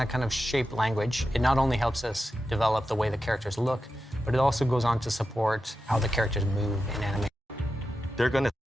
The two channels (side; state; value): both; normal; correlation 0.90